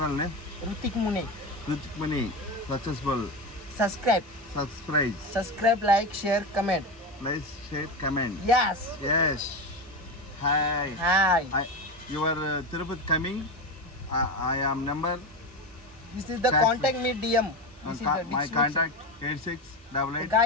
name? Rutik Mune. Rutik Mune. Successful. Subscribe. Subscribe. Like, share, comment. Like, share, comment. Yes. Yes. Hi. Hi. You are Tirupati coming. I am number. This is the contact me DM. This is the My description. contact 8688.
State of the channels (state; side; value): normal; both; correlation 0.19